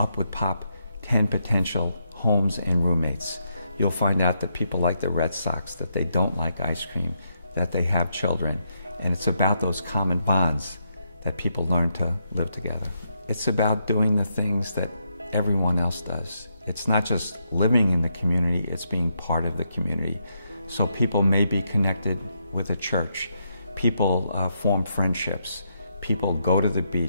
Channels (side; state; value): both; inverted; correlation -0.80